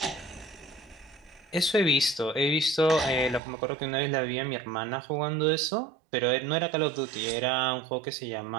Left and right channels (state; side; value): drops out; left; at 3.4 s